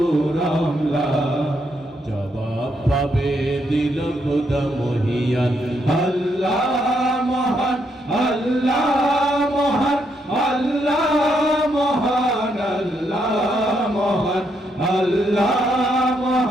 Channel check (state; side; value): normal; both; correlation 0.77